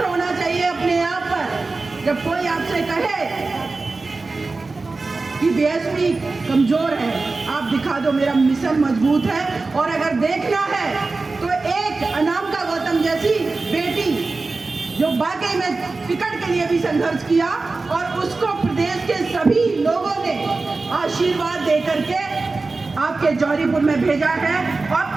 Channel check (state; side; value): quieter; left; 3.7 dB